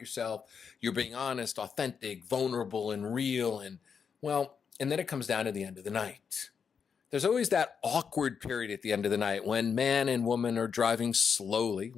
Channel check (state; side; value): quieter; right; 6.5 dB